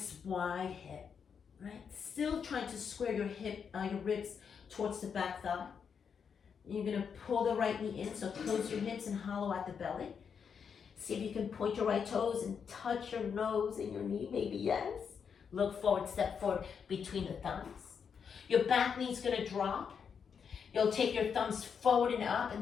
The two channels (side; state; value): right; quieter; 6.7 dB